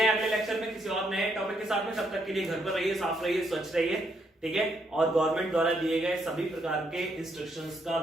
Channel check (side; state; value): both; normal; correlation 0.75